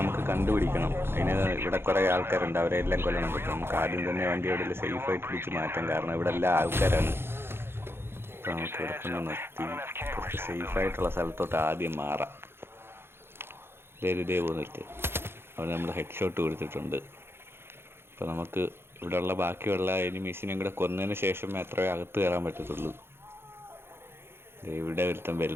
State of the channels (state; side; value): late; left; 0.11 ms